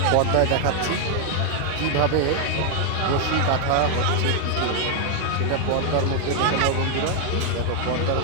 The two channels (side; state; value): both; different; correlation 0.00